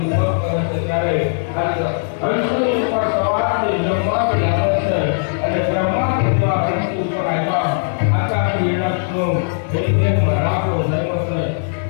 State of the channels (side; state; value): right; silent; 67 dB below the other